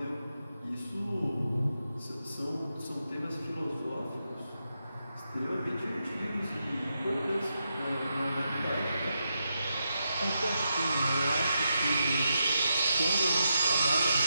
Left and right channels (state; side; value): inverted; both; correlation -0.85